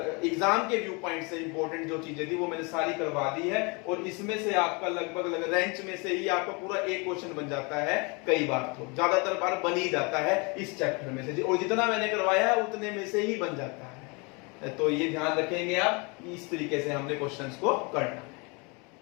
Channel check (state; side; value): quieter; right; 30.2 dB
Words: एग्जाम के व्यू पॉइंट से इंपॉर्टेंट जो चीजें थी वो मैंने सारी करवा दी है और इसमें से आपका लगभग रेंज में से ही आपका पूरा एक क्वेश्चन बन जाता है, कई बार तो ज्यादातर बार बन ही जाता है इस चैप्टर में से, और जितना मैंने करवाया है उतने में से ही बन जाता है। तो ये ध्यान रखेंगे आप, इस तरीके से हमने क्वेश्चंस को करना।